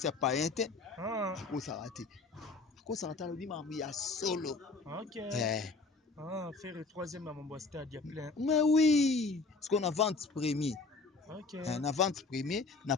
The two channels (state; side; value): quieter; right; 3.8 dB